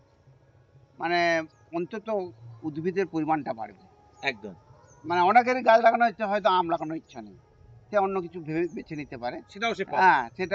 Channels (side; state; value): both; identical; correlation 1.00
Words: মানে অন্তত উদ্ভিদের পরিমাণটা বাড়বে। একদম, মানে অনেকেরই গাছ লাগানোর ইচ্ছা, হয়তো আম লাগানোর ইচ্ছা নেই, সে অন্য কিছু ভেবে বেছে নিতে পারে, সেটাও সে পাবে। হ্যাঁ